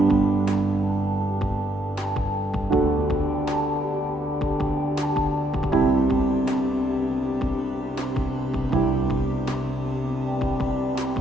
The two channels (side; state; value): both; normal; correlation 0.73